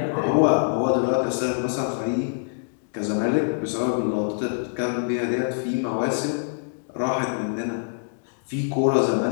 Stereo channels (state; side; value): silent; right; digital silence